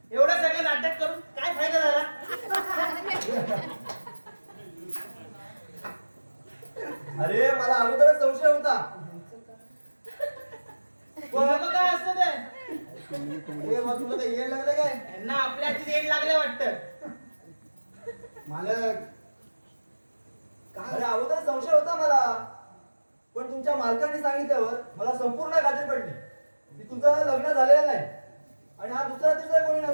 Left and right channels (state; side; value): inverted; both; correlation -1.00